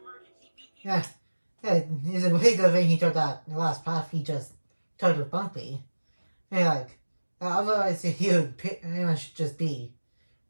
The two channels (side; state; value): both; inverted; correlation -1.00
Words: beacon. Yeah, it's a really good thing he took that the last path he just took with Bumpy. And otherwise he would pretty much just be